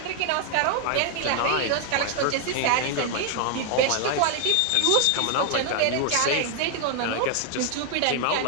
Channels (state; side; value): different; both; correlation 0.00